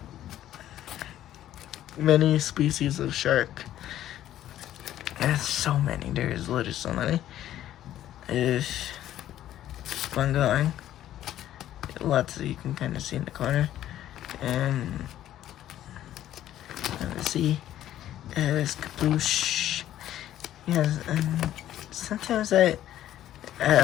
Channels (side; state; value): right; quieter; 12.5 dB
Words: many species of shark. There's so many. There's literally so many. If I'm going, lots that you can kind of see in the corner. And let's see. There's Caploosh. Yes, and sometimes I